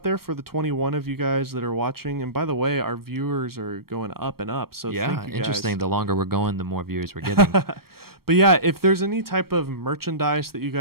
there for the 21 of you guys that are watching. And by the way, our viewers are going up and up. So thank you guys. Interesting. The longer we're going, the more viewers we're getting. But yeah, if there's any type of merchandise that you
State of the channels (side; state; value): left; late; 0.94 ms